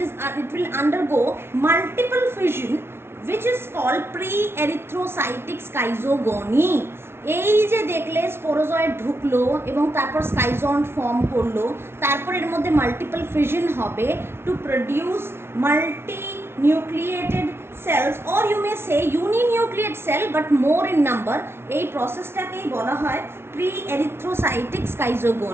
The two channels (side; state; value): left; late; 0.12 ms